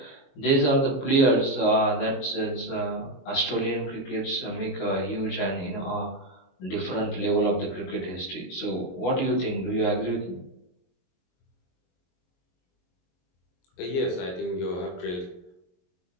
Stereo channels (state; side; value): late; right; 22 ms